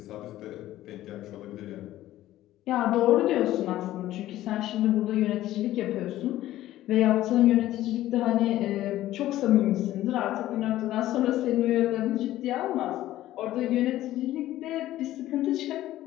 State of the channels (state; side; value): quieter; right; 14.4 dB